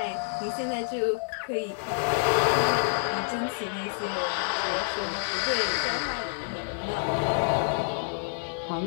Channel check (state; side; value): silent; right; digital silence